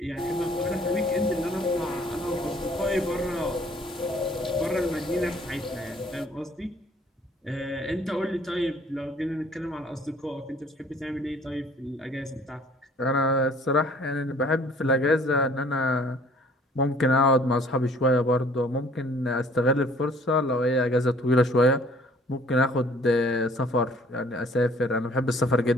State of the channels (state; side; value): normal; both; correlation 0.56